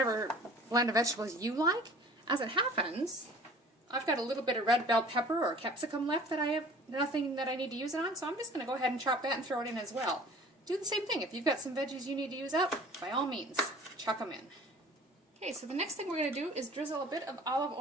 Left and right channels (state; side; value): normal; both; correlation 0.47